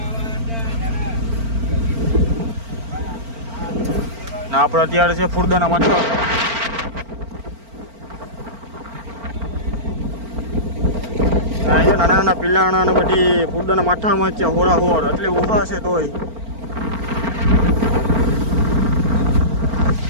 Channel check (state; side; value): late; left; 4.4 ms